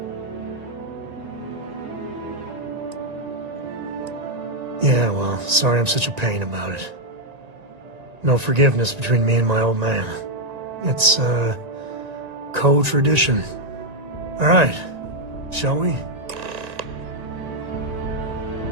Yeah, well, sorry I'm such a pain about it. No forgiveness between me and my old man. It's, co-tradition. All right, shall we?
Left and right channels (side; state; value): left; late; 1.9 ms